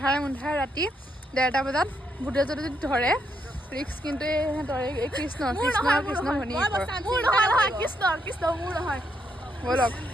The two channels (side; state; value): both; normal; correlation 0.77